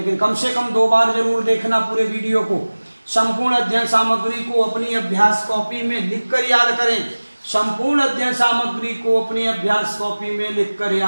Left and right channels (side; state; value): both; inverted; correlation -1.00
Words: कम से कम 2 बार जरूर देखना पूरे वीडियो को। संपूर्ण अध्ययन सामग्री को अपनी अभ्यास कॉपी में लिखकर याद करें। संपूर्ण अध्ययन सामग्री को अपनी अभ्यास कॉपी में लिखकर